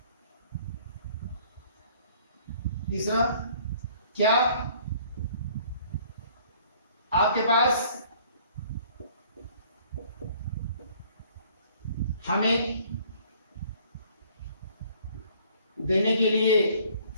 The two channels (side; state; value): both; inverted; correlation -0.57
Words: तीसरा, क्या आपके पास हमें देने के लिए